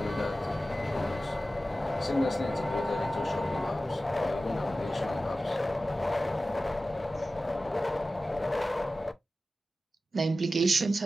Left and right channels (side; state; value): both; normal; correlation 0.94